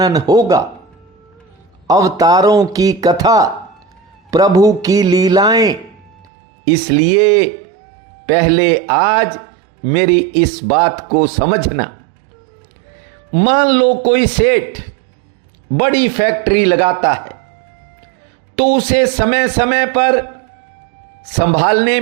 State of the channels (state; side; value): drops out; left; at 6.2 s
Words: होगा। अवतारों की कथा, प्रभु की लीलाएं। इसलिए पहले आज मेरी इस बात को समझना। मान लो कोई सेठ बड़ी फैक्ट्री लगाता है तो उसे समय समय पर संभालने